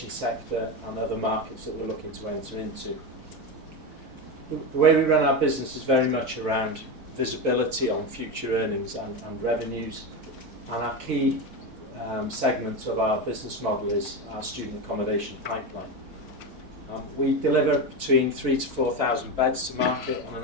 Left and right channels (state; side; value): late; left; 4.6 ms